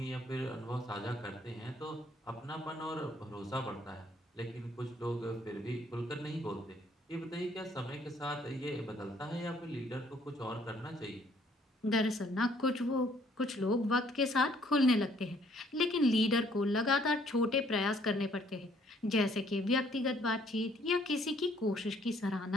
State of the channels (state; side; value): normal; both; correlation 0.64